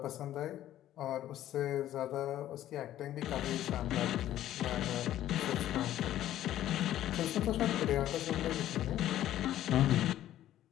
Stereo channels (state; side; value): quieter; right; 12.8 dB